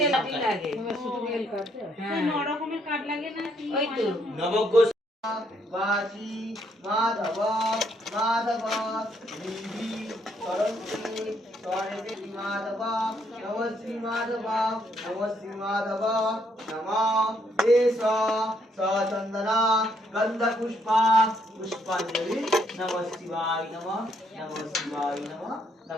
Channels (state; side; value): normal; both; correlation 0.72